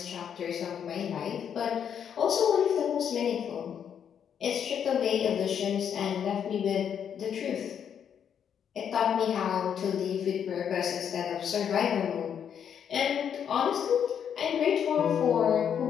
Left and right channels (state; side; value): quieter; right; 8.3 dB